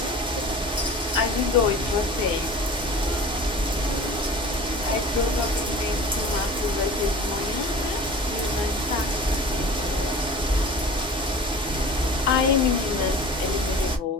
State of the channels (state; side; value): normal; both; correlation 0.39